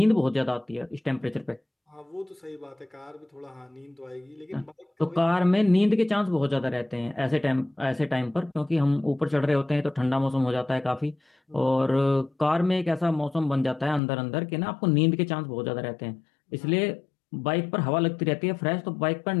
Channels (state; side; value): drops out; right; at 14.0 s